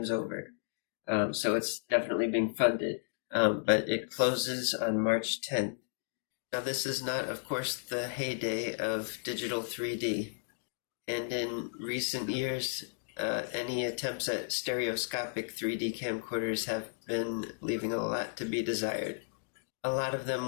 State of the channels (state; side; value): silent; right; digital silence